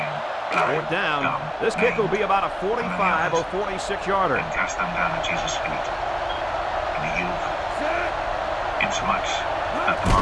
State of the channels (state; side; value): identical; both; correlation 1.00